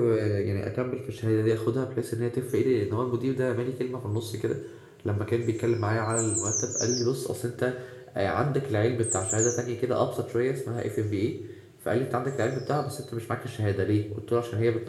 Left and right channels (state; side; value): identical; both; correlation 1.00